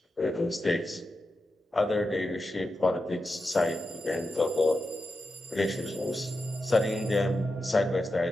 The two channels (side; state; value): both; normal; correlation 0.89